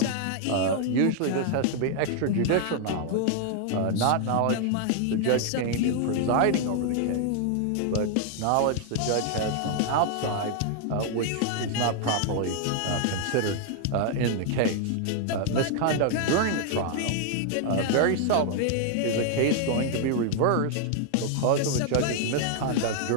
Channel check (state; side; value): different; both; correlation 0.00